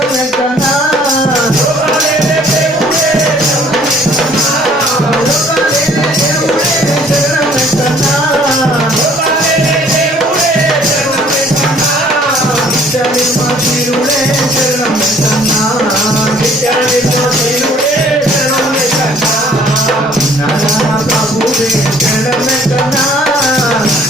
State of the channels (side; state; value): both; normal; correlation 0.57